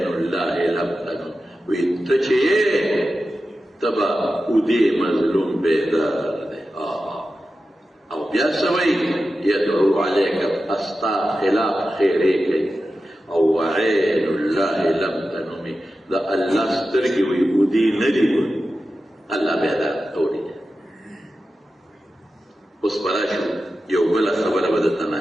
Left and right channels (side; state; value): both; normal; correlation 0.92